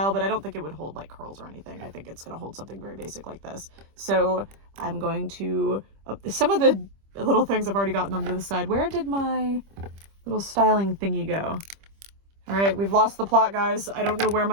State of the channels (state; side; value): late; left; 25 ms